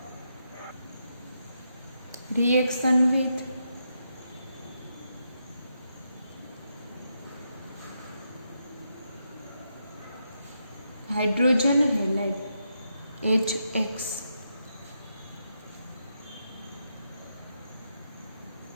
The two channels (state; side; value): inverted; both; correlation -0.82